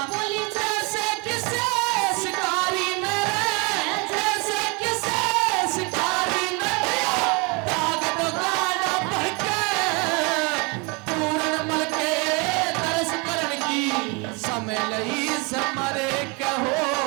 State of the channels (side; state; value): left; quieter; 30.3 dB